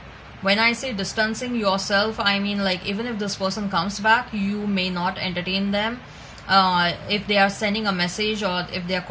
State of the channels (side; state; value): both; identical; correlation 1.00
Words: When I say distancing yourself, I mean, like, even if this person comes back, you may not entertain them. If they are sending a message or if they are